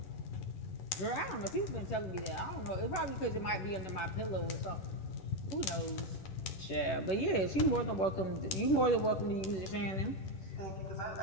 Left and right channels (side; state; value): right; late; 11 ms